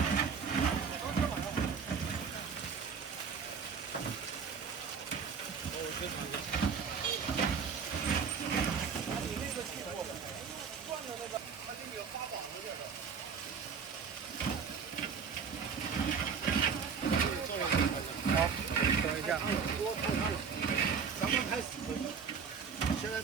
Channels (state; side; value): quieter; left; 6.2 dB